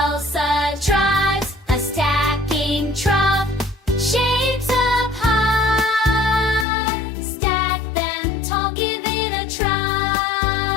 trots a stacking trot, shapes up high. Stack them tall, give it a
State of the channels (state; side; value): drops out; right; at 6.7 s